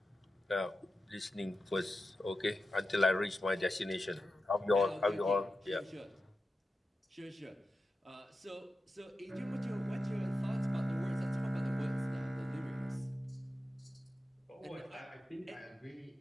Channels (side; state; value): both; normal; correlation 0.92